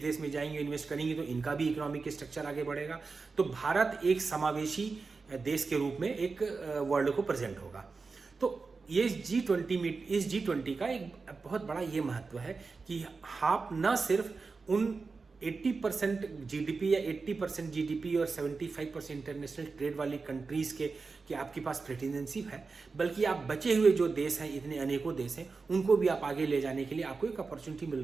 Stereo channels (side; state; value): left; quieter; 4.4 dB